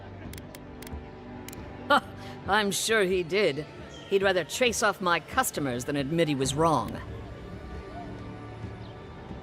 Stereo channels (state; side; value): identical; both; correlation 1.00